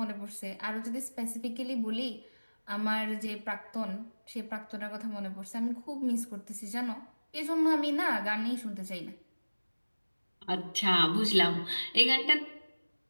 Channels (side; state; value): both; inverted; correlation -1.00